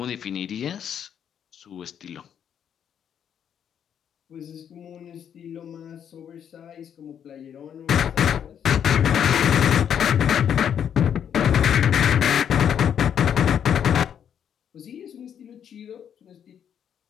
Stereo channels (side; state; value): right; quieter; 8.7 dB